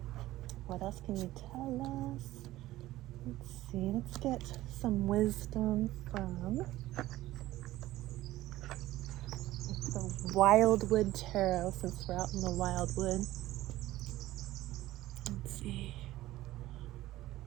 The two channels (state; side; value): quieter; left; 16.0 dB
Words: What else can you tell us? Let's see. Let's get some wisdom from the Wildwood Tarot, since we're out in the wildwood. Let's see.